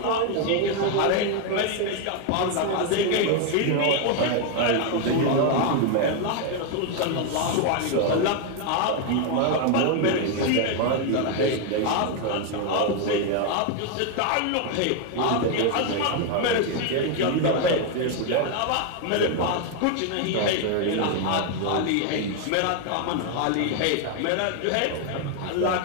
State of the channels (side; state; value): both; different; correlation 0.01